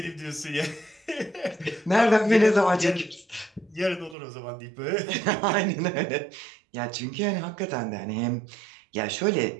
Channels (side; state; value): left; drops out; at 4.2 s